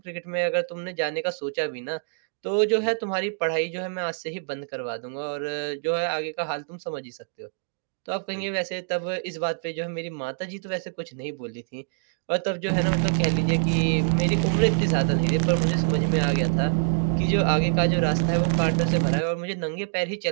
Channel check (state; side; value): silent; left; digital silence